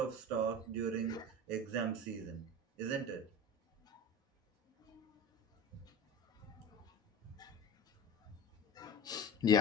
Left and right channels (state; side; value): normal; both; correlation 0.33